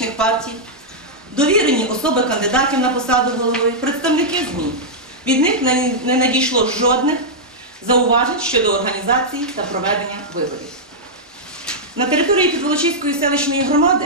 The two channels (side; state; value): both; normal; correlation -0.07